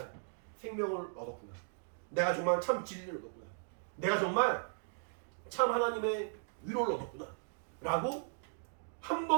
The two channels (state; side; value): silent; left; digital silence